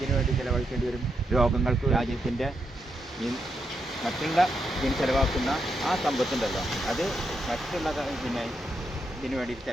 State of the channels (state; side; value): normal; both; correlation 0.82